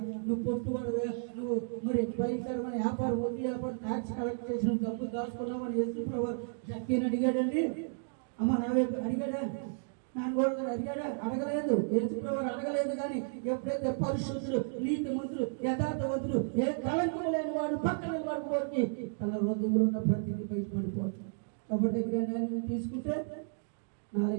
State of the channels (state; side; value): silent; left; digital silence